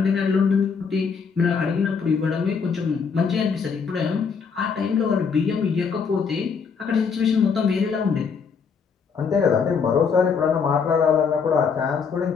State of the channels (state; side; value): quieter; right; 5.9 dB